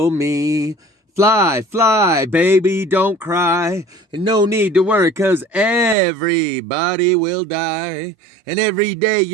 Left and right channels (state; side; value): drops out; left; at 6.0 s